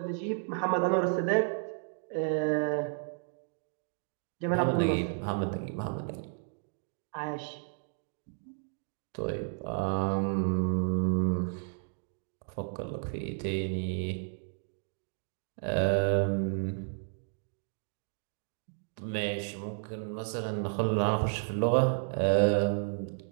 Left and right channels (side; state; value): left; silent; 56 dB below the other